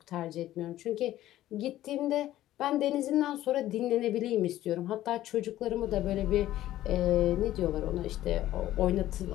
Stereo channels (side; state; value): right; quieter; 14.0 dB